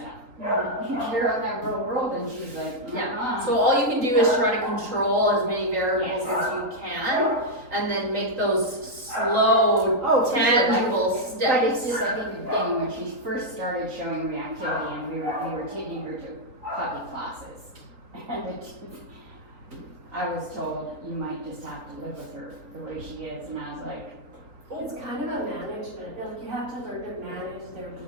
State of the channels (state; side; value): late; left; 3.7 ms